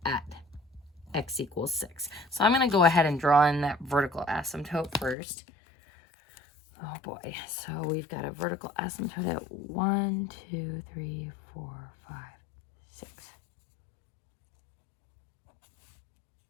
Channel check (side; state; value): right; drops out; at 5.2 s